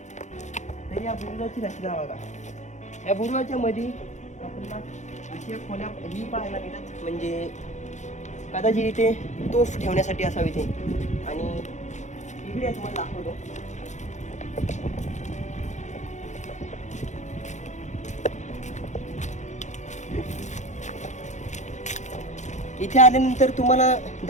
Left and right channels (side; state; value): right; late; 0.34 ms